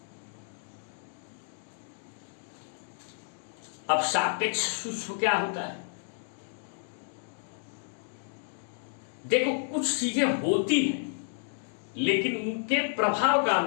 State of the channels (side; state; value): right; silent; digital silence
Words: अब सापेक्ष सूक्ष्म क्या होता है? देखो, कुछ चीजें होती हैं लेकिन उनके प्रभाव का